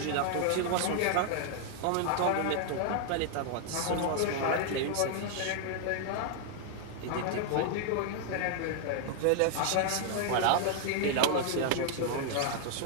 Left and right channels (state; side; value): different; both; correlation 0.00